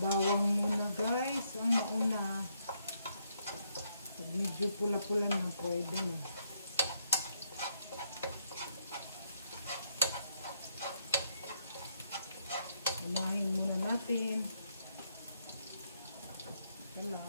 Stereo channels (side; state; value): both; inverted; correlation -0.75